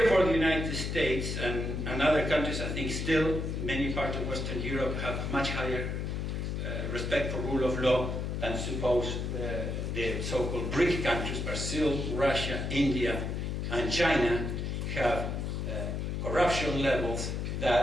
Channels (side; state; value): left; noise; hum, 2 dB below the sound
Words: for the United States and other countries, I think still many parts of Western Europe have much higher respect for rule of law than suppose the so-called BRIC countries, Brazil, Russia, India, and China, have corruption levels